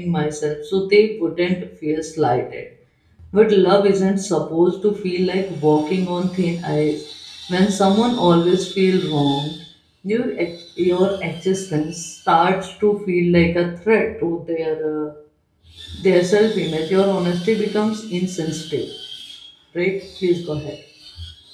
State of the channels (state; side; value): identical; both; correlation 1.00